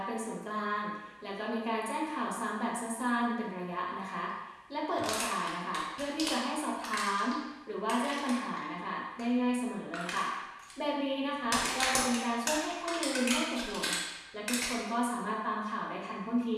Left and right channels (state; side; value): identical; both; correlation 1.00